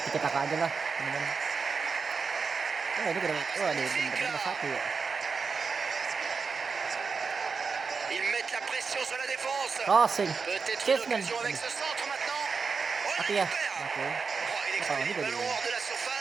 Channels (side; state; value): left; quieter; 5.1 dB